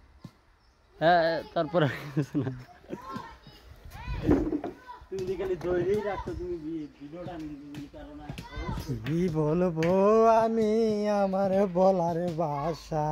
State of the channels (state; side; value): identical; both; correlation 1.00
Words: হ্যাঁ, তারপরে তুমি খালি ধৈর্যই রাখছো, তুমি ভিডিওটা কি বলবো আমি, আমার বলার ভাষা